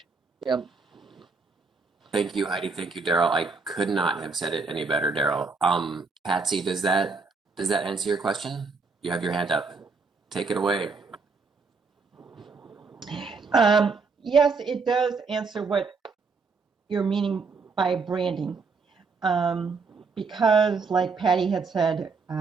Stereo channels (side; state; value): left; quieter; 4.5 dB